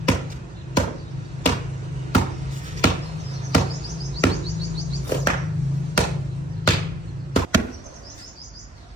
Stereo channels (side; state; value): both; normal; correlation 0.57